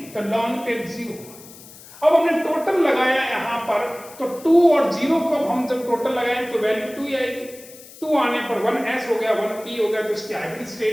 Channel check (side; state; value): left; noise; hiss, 19 dB below the sound